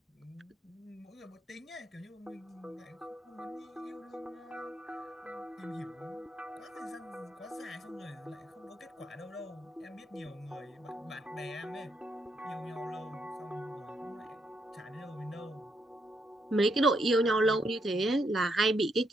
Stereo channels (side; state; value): both; normal; correlation 0.77